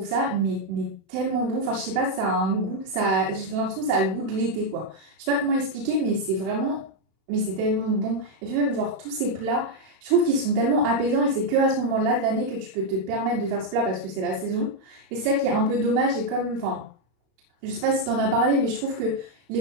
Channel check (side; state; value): left; late; 32 ms